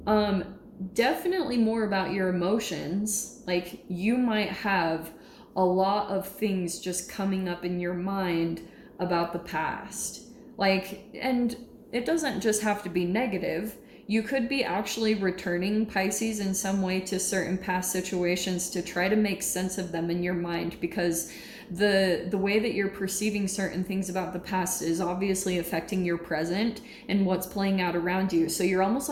definitely more about your emotions. Like, you might have a lot of things just coming up in your mind about the past. Like, and it doesn't just have to be negative. You could be actually returning, Pisces, in some way to certain past situations to try to make sense of them in your mind, because the way that you're perceiving certain things about the past is obviously affecting your present and what's playing out around you. So you're almost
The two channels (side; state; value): both; identical; correlation 1.00